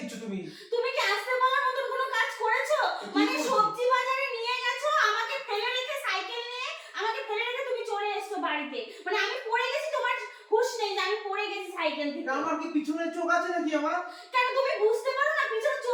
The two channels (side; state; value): both; identical; correlation 1.00